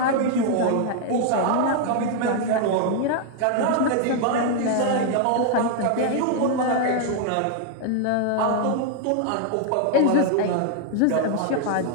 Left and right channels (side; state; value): both; different; correlation 0.00